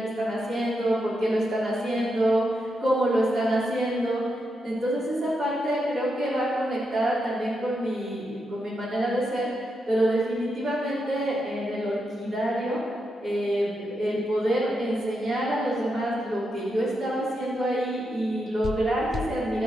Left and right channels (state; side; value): normal; both; correlation 0.84